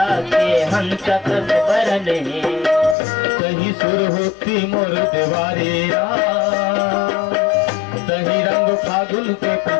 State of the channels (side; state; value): right; drops out; at 3.0 s